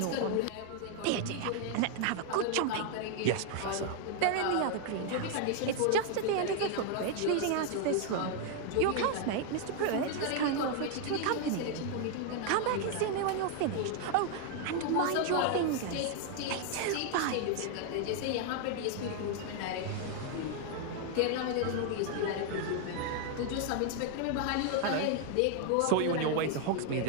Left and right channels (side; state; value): both; different; correlation 0.00